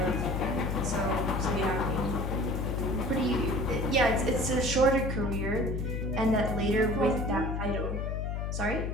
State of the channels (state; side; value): noise; left; hum, 2 dB below the sound